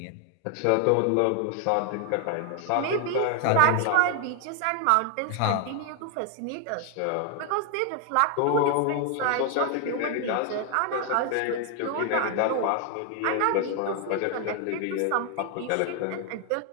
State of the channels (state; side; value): different; both; correlation 0.00